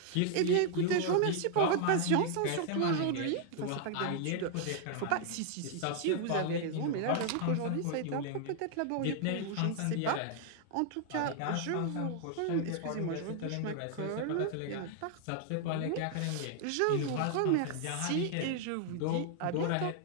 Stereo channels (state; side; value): different; both; correlation 0.00